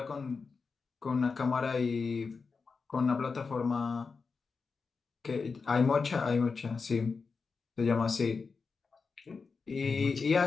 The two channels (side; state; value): right; quieter; 4.8 dB